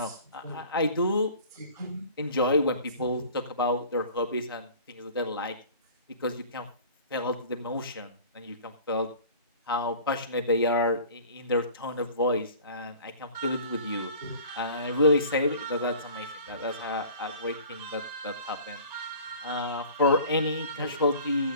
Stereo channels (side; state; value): both; inverted; correlation -0.45